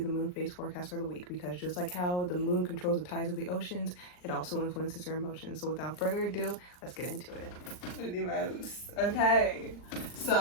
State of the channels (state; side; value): late; right; 39 ms